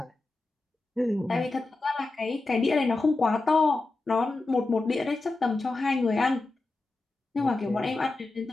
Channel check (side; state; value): right; quieter; 3.2 dB